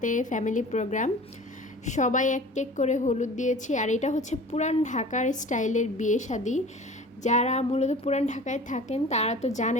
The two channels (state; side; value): normal; both; correlation 0.42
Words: ফ্যামিলি প্রোগ্রাম। সবাই এক এক করে হলুদ দিয়েছি। আর এটা হচ্ছে পুরান ঢাকার স্টাইলের বিয়ে শাদী। যারা মূলত পুরান ঢাকায় থাকেন তারা তো